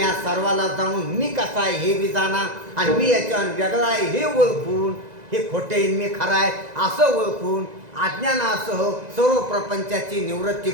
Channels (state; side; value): late; left; 2.0 ms